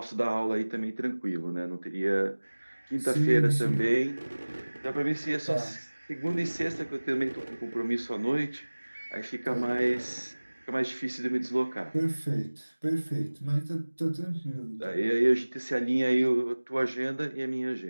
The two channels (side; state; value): both; inverted; correlation -1.00